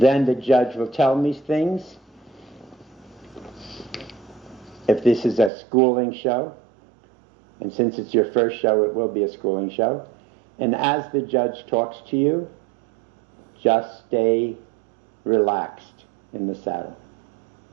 the judge will tell me things. If this is a schooling show, and since it's your first show, it will be a schooling show. And as the judge talks to you, just stay relaxed in the saddle.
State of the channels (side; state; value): left; drops out; at 5.5 s